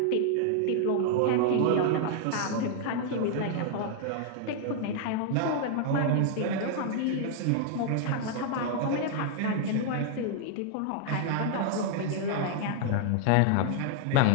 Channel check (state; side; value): different; both; correlation 0.00